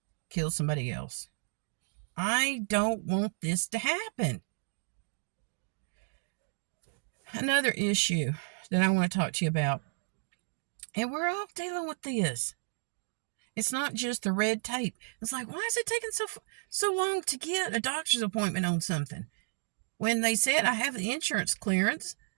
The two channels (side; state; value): left; silent; digital silence